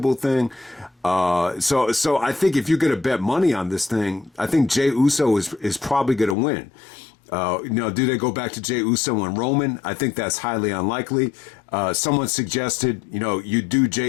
thing. So I think if you're going to bet money on this thing, I think Jey Uso is probably going to win. Do they go back to Jey Uso and Roman? I think that's highly unlikely. Someone suggested, you do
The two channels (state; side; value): drops out; right; at 6.4 s